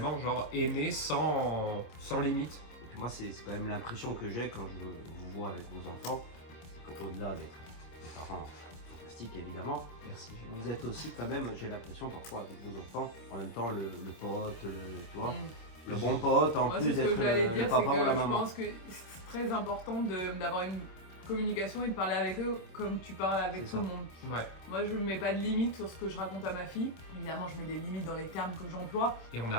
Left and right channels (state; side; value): late; right; 26 ms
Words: aimer sans limite. Et puis moi, c'est quand même l'impression que j'ai quand je vous vois avec vos enfants, c'est qu'au-delà d'être des parents fantastiques évidemment, Merci. vous êtes aussi quand même, j'ai l'impression parfois avec vos enfants, en même temps le pote, tu vois, le bon pote en Moi, plus c'est ce d'être que j'allais le dire, c'est papa ou la que je maman. pense que c'est très important d'avoir une communication et de parler avec eux comme tu parles avec C'est tout ça. le monde. Ouais. Moi, je ne mets pas de limite sur ce que je raconte à ma fille. Évidemment, je mets des limites dans les termes que j'emploie. Et on n'a